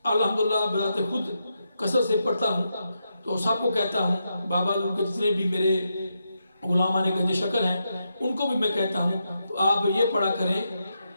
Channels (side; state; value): both; inverted; correlation -0.84